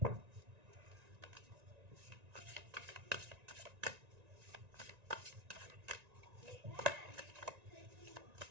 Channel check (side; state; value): left; late; 1.9 ms